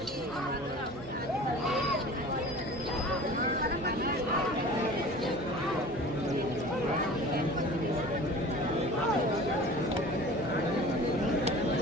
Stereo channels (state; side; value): normal; both; correlation 0.41